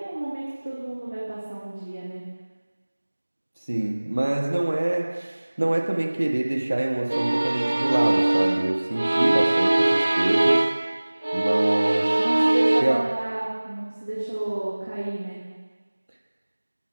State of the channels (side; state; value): both; inverted; correlation -1.00